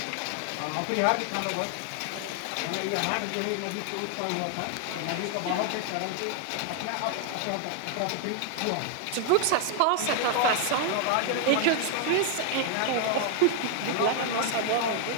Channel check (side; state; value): both; different; correlation 0.00